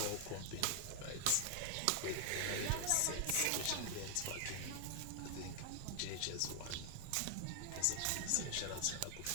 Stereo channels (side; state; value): both; different; correlation 0.00